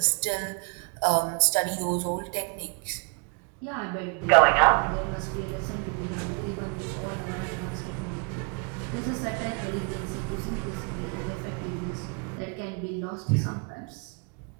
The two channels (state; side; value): quieter; left; 36.2 dB